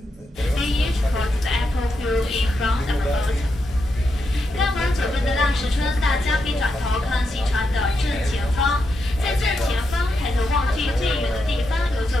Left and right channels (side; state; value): both; normal; correlation 0.84